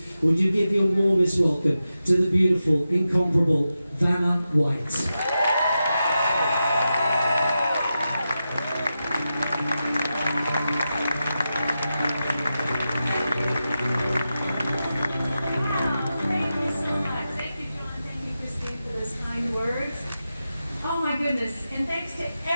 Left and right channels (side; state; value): both; inverted; correlation -0.90